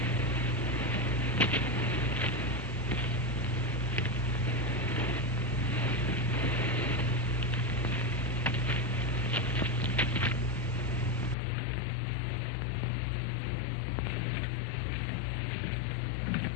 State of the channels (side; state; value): right; drops out; at 11.4 s